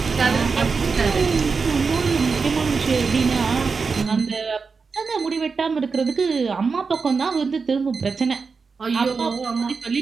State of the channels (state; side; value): quieter; left; 4.9 dB